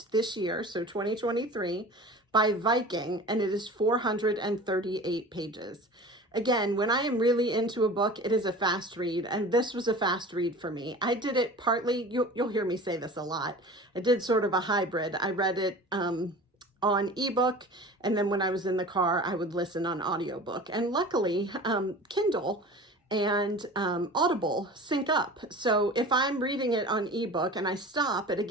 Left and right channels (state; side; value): normal; both; correlation 0.38